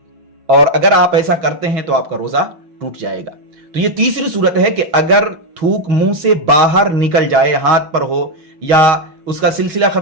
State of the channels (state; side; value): late; left; 6.3 ms